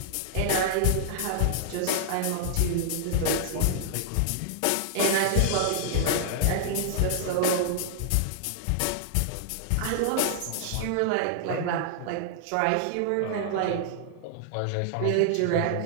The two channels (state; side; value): different; both; correlation -0.01